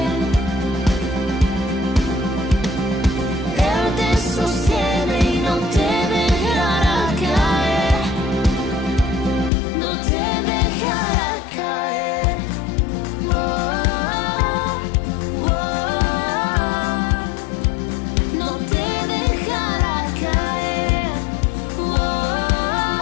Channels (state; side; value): drops out; right; at 9.5 s